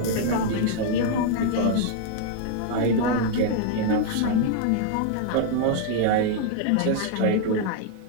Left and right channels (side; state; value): both; different; correlation 0.00